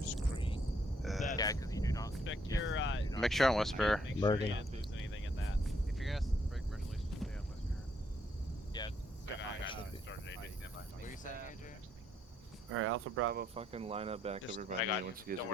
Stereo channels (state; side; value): normal; both; correlation 0.72